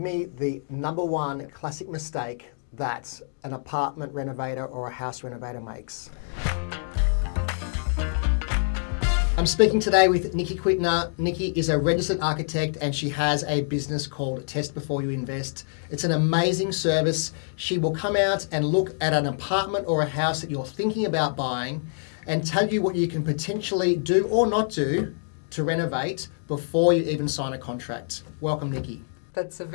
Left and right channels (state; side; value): silent; right; digital silence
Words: the number one classic mistake that an apartment renovator or a house renovator makes. I'm speaking today with Nikki Quittner. Nikki is a registered architect and she has a business called Test Before You Invest. It's an amazing service. She will come out and look at an apartment or a house that you're thinking about buying and tell you what you can potentially do or not do to renovate before you even sign a contract. Welcome, Nikki. That's a